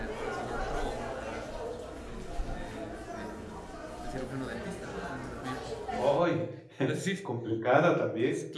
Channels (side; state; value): both; identical; correlation 1.00